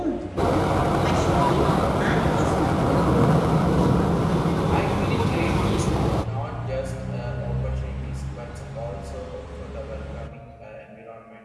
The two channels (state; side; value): identical; both; correlation 1.00